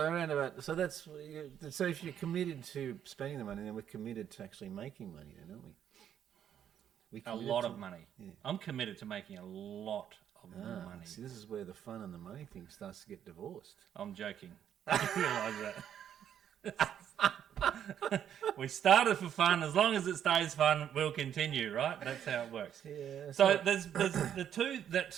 about. So that's. So if you're committed to spending the money, then we're committed to actually making money, then, aren't we? A lot of money. Yeah. I'm committed to making a lot of money. See, this is where the fun and the money thing starts to get divorced. I'm joking. You realise that. We started for fun. As long as it stays fun, we'll continue, right? That's how it works. Yeah. So there's the two that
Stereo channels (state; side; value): quieter; left; 9.5 dB